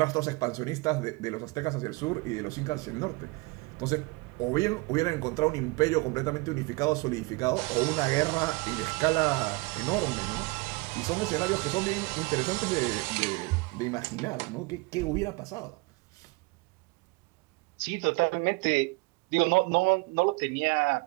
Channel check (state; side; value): quieter; left; 25.8 dB